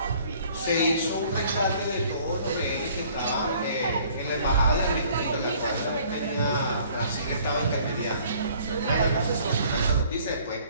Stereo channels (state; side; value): inverted; both; correlation -0.56